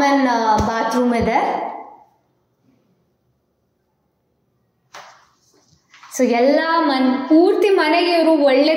ಬಾತ್ರೂಮ್ ಇದೆ. ಸೊ ಎಲ್ಲ ಪೂರ್ತಿ ಮನೆಗೆ ಇವರು ಒಳ್ಳೆ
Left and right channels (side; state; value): both; identical; correlation 1.00